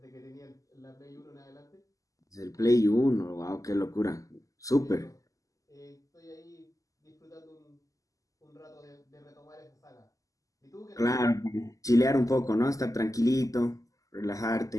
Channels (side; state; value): right; late; 0.16 ms